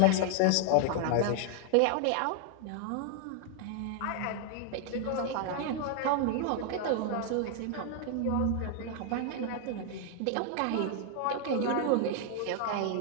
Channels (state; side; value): different; both; correlation 0.00